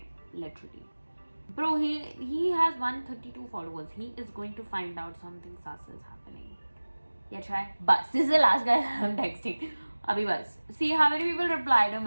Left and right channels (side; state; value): both; inverted; correlation -1.00